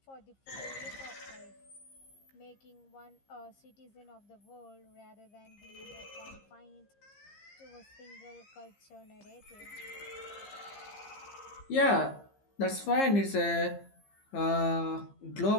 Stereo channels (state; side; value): late; right; 15 ms